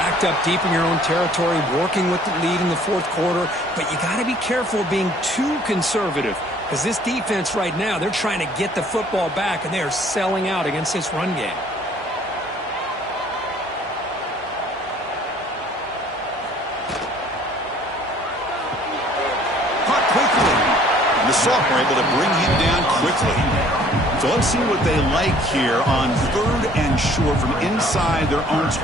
up deep in your own territory, working with the lead in the 4th quarter, but you got to be careful of being too conservative because this defense right now, they're trying to get the football back, and they are selling out against this run game. Caught quickly. And the sophomore able to bring him down quickly. So let's see what they like here on 3rd and short from inside their own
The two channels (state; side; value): normal; both; correlation 0.56